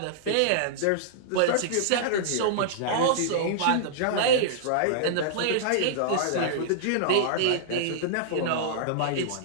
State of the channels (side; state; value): both; different; correlation -0.02